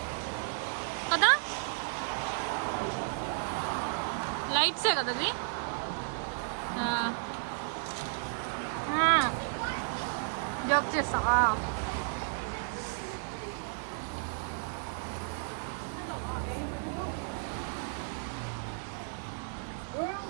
కదా, లైట్సే కదా అది. జోక్ చేస్తా.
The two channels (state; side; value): silent; left; 56 dB below the other